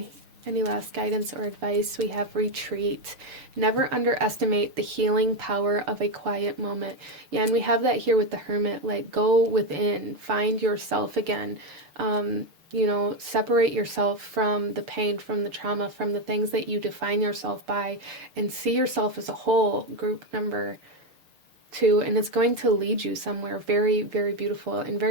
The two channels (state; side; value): late; left; 6.5 ms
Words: Any last guidance or advice? We have retreat. Never underestimate the healing power of a quiet moment. Yeah, and we have that here with the Hermit. Like, go within, find yourself again. You know, separate yourself from the pain, from the trauma, from the things that you define yourself by, and see yourself as a whole, group number 2. And it's going to lead you somewhere very, very beautiful and